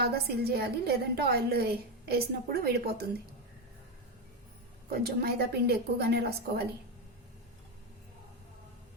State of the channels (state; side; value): normal; both; correlation 0.10